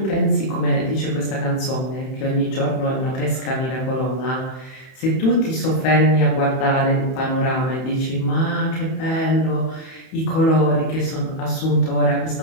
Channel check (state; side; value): late; right; 31 ms